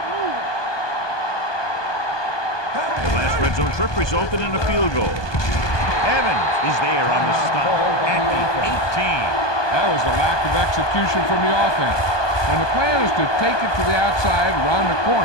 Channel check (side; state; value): right; late; 1.2 ms